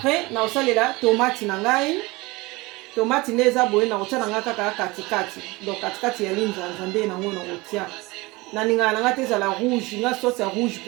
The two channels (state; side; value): quieter; left; 22.8 dB